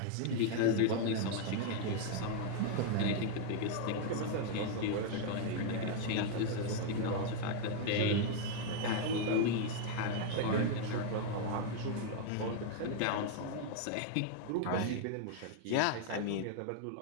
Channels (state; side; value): different; both; correlation 0.00